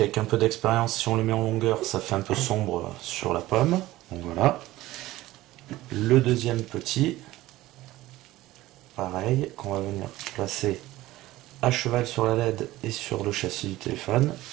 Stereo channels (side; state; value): left; quieter; 16.9 dB